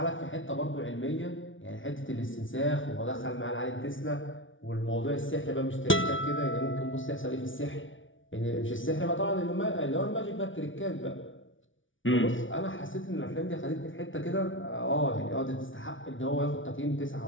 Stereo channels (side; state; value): right; late; 0.56 ms